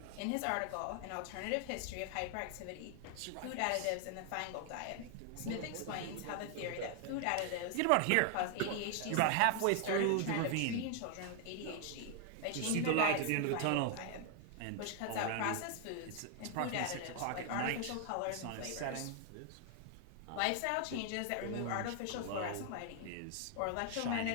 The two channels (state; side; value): different; both; correlation 0.00